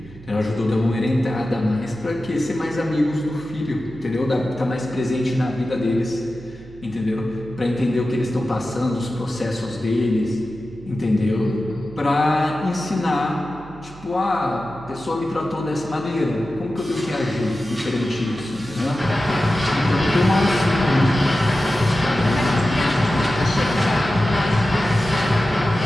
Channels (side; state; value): right; noise; hum, 20 dB below the sound